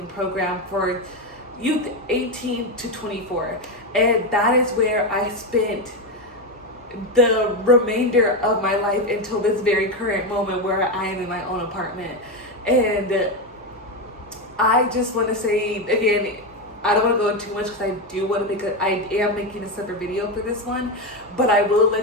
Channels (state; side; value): normal; both; correlation 0.11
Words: program for youth 18 to 24. And that is where I spent the remainder of my life until this very current moment where I am in my own apartment. And I just want to say again, I don't want to go into too much because I do want to I am making a separate video for this one, but I will